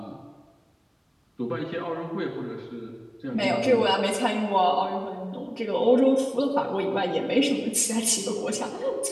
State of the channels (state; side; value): identical; both; correlation 1.00